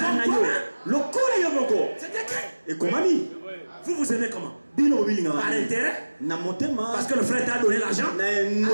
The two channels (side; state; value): both; inverted; correlation -1.00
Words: C'est écrit. Vous aimez comment? Par intérêt? Parce que le frère t'a donné l'argent. J'aime